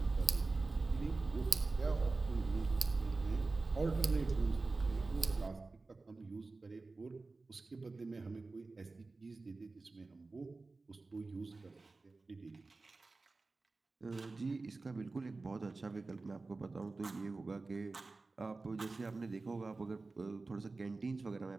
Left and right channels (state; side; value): quieter; left; 3.6 dB